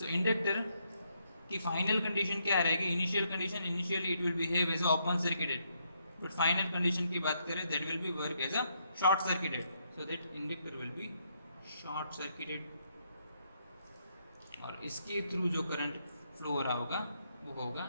इंडक्टर की फाइनल कंडीशन क्या रहेगी। Initial condition, initially it will behave as a open circuited, but final condition की बात करें that will be work as a short circuited. So that inductor will be short circuited और इसके through जो current flow हो रहा होगा वो होगा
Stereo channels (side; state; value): both; inverted; correlation -0.76